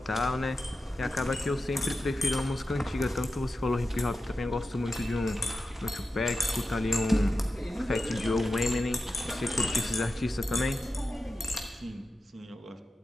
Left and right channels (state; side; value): normal; both; correlation 0.91